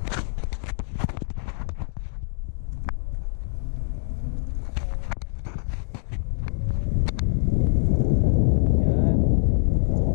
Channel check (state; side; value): silent; right; digital silence